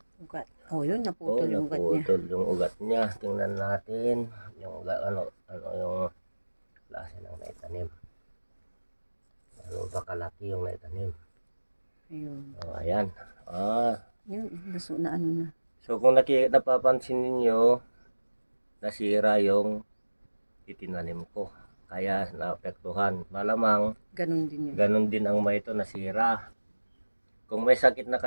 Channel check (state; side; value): inverted; both; correlation -1.00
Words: Ugat. Oh, yun, naputol yung ugat niya. Naputol yung ugat niya. Tingnan natin yung ugat, ano yung klase ng naitanim. Ano ba kalaki yung naitanim? Ayun. Oh, ayan. Yun, naso na ano na. So kung napapansin ninyo, nasira yung itinanim ko. Kaya naapektuhan. Malamang Ganon din yun. ganun din ang may ito nasira. Kung may sakit na